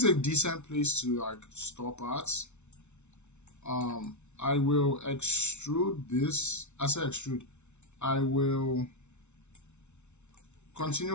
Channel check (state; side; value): late; right; 0.82 ms